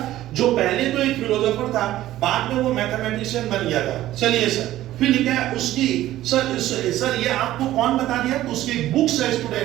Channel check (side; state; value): left; quieter; 14.4 dB